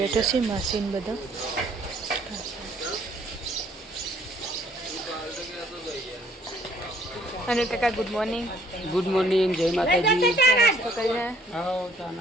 છે. માસીને બધા અને કાકા ગુડ મોર્નિંગ. ગુડ મોર્નિંગ, જય માતાજી. નાસ્તો કરીને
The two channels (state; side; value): normal; both; correlation 0.60